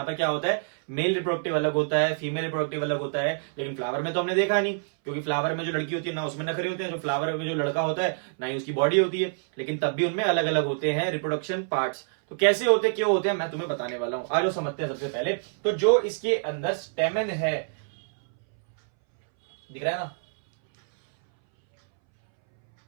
पर क्या होता है, मेल रिप्रोडक्टिव अलग होता है, फीमेल रिप्रोडक्टिव अलग होता है। लेकिन फ्लावर में तो हमने देखा नहीं, क्योंकि फ्लावर में जो लड़की होती है ना उसमें नखरे होते हैं, जो फ्लावर में जो लड़का होता है ना ही उसकी बॉडी होती है, लेकिन तब भी उनमें अलग अलग होते हैं रिप्रोडक्शन पार्ट्स। तो कैसे होते क्यों होते हैं मैं तुम्हें बताने वाला हूं। आज समझते हैं सबसे पहले। तो जो इसके अंदर स्टेमन है, दिख रहा है ना,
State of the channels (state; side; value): silent; left; 61 dB below the other